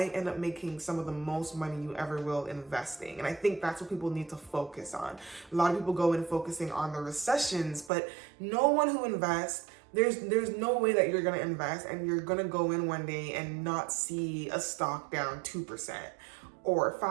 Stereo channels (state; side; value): drops out; left; at 7.9 s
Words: end up making some of the most money you ever will investing. And I think that's what people need to focus on. A lot of people go in focusing on the recessions, but no one who invests, there's no way that you're going to invest and you're going to go in one day and not see a stock down 2% or